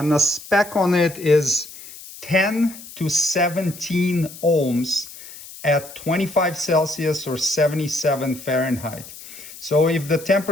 the spec on it is 10 to 17 ohms at 25 Celsius or 77 Fahrenheit. So if the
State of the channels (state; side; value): noise; left; hiss, 16 dB below the sound